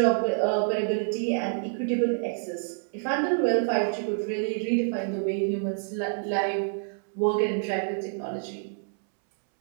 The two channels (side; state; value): left; silent; 60 dB below the other